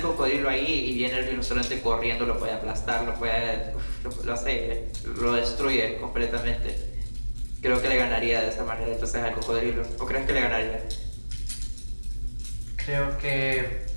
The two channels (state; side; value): inverted; both; correlation -1.00